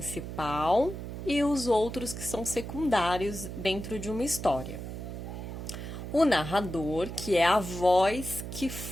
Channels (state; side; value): noise; right; hum, 8 dB below the sound